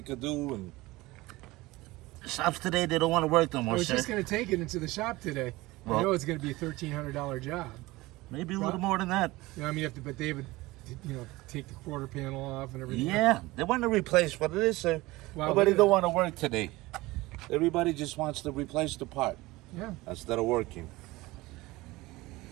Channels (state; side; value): quieter; left; 20.2 dB